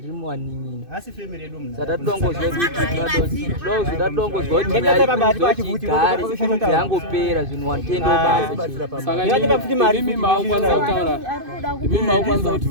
nini. Asi family yedu mna. Sata tudongozwe kuti nyari yangopera zvinhu watendo basa. Saka mimi maukwanza kutaura. Mimi maukwanza kuti.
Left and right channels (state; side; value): late; left; 2.5 ms